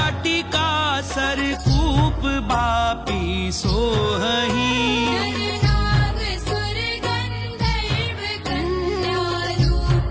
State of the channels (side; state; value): both; identical; correlation 1.00